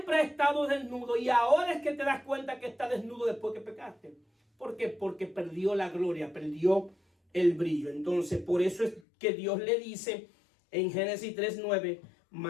has estado desnudo y ahora es que te das cuenta que está desnudo después que pecaste? ¿Por qué? Porque perdió la gloria, perdió el brillo. Entonces por eso es que Dios le dice en Génesis 3:9,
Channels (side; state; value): right; drops out; at 9.0 s